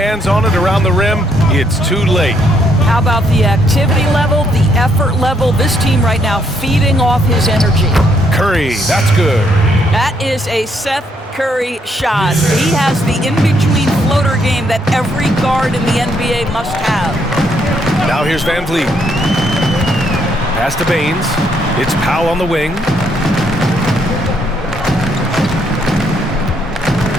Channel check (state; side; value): normal; both; correlation 0.72